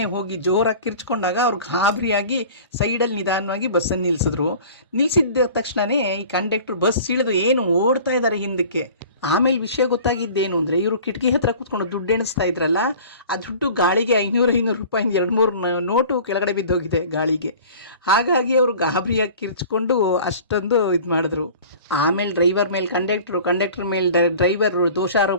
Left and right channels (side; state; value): both; inverted; correlation -0.43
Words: ಹೋಗಿ ಜೋರಾಗಿ ಕಿರ್ಚ್ಕೊಂಡಾಗ ಅವ್ರು ಗಾಬರಿಯಾಗಿ ಸೈಡಲ್ಲಿ ನಿಧಾನವಾಗಿ ಬಸ್ಸನ್ನು ನಿಲ್ಲಿಸಿದ್ದ ತಕ್ಷಣವೇ ಈ ಕಂಡಕ್ಟ್ರು ಬಸ್ ಇಳಿದು ಏನು ಓಡ್ತಾ ಇದ್ದಾರೆ ಹಿಂದಕ್ಕೆ. ಆಮೇಲೆ ವಿಷಯ ಗೊತ್ತಾಗಿದ್ದೇನು ಅಂದರೆ, ಇವರು ಕಿಟಕಿ ಹತ್ರ ಕೂತ್ಕೊಂಡು ದುಡ್ಡು ಎಣಿಸ್ತಾ ಇದ್ರಲ್ಲ, ಆ ದುಡ್ಡು ಗಾಳಿಗೆ 500 ರೂಪಾಯಿಂದ 2-3 ನೋಟು ಕೆಳಗಡೆ ಬಿದ್ದೋಗಿದೆ ಗಾಳಿಗೆ. ಹಾಗಾಗಿ ಅವರು ಗಾಬರಿಯಾಗಿ ಕಿರ್ಚ್ಕೊಂಡು ಅಷ್ಟೊಂದು ಇದು ಮಾಡಿದ್ರು. ಆಮೇಲೆ ಡ್ರೈವರ್ ಮೇಲೆ ಕಂಡಕ್ಟ್ರ್ ಮೇಲೆ ಡ್ರೈವರ್